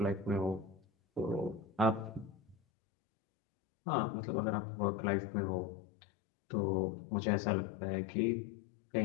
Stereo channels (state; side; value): drops out; right; at 2.6 s